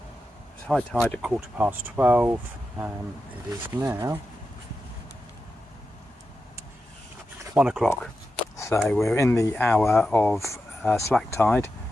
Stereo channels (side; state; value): both; normal; correlation 0.89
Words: 12:15. It is now 1 o'clock. So we're in the hour of slack tide,